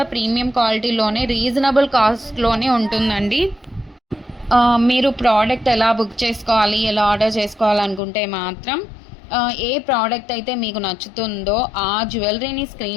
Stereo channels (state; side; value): drops out; right; at 8.0 s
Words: ప్రీమియం క్వాలిటీలోనే రీజనబుల్ కాస్ట్లోనే ఉంటుందండి. మీరు ప్రోడక్ట్ ఎలా బుక్ చేసుకోవాలి, ఎలా ఆర్డర్ చేసుకోవాలనుకుంటే మాత్రం ఏ ప్రోడక్ట్ అయితే మీకు నచ్చుతుందో ఆ జ్యువెలరీని